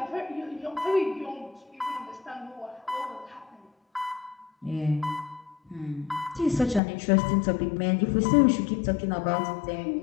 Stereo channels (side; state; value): right; drops out; at 6.8 s